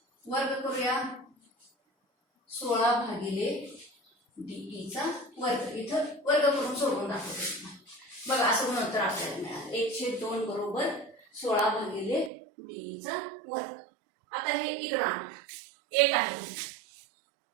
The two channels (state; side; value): drops out; left; at 12.3 s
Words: वर्ग करूया. 16 भागिले डी चा वर्ग, इथं वर्ग करून सोडवून दाखवतो बघा. असं गुणोत्तर आपल्याला मिळालं 1/2 बरोबर 16 भागिले डी चा वर्ग. आता हे इकडं आणा, 1 आहे